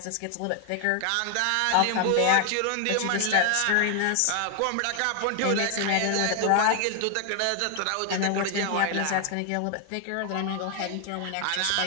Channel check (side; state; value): both; different; correlation 0.00